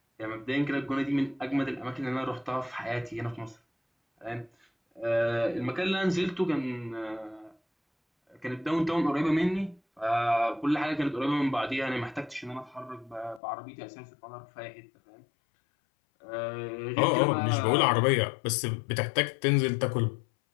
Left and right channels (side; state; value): right; drops out; at 13.4 s